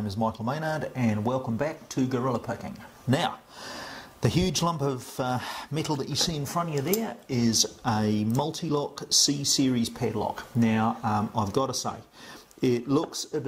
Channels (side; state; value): both; identical; correlation 1.00